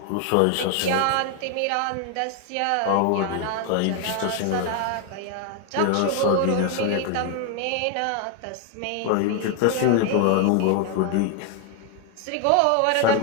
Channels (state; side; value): different; both; correlation 0.01